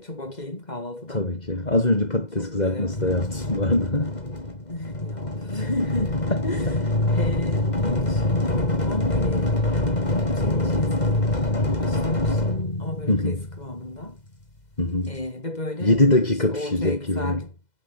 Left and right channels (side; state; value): right; late; 2.0 ms